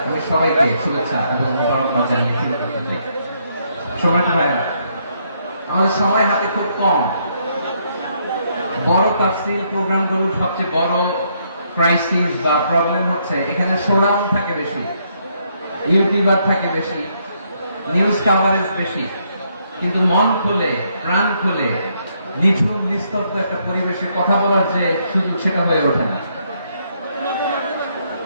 আমি সবাইকে শুভেচ্ছা এবং মোবারকবাদ জানিয়ে শুরু করতে চাই। সময় ভাইরা, আমাদের সময় হাতে খুব কম। বড় তাফসীর প্রোগ্রামগুলোর সবচেয়ে বড় ক্রাইসিস বা প্রবলেম হচ্ছে এখানে শোডাউন থাকে বেশি, ইউটিউবার থাকে বেশি, নিউজ কাভারেজ বেশি, কিন্তু মন খুলে, প্রাণ খুলে, নিঝুম নিস্তব্ধ একটা পরিবেশে কথা বলার যে সুযোগ, সেটা হয়ে ওঠে না।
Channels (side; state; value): both; inverted; correlation -0.73